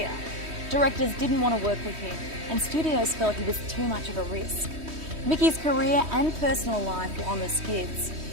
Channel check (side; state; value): left; late; 3.1 ms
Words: Directors didn't want to work with him, and studios felt he was too much of a risk. Micky's career and personal life were on the skids.